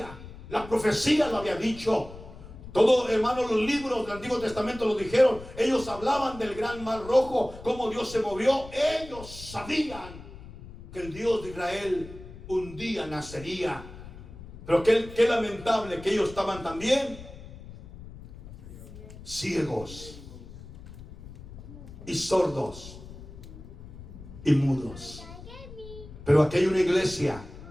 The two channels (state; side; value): noise; left; rumble, 15 dB below the sound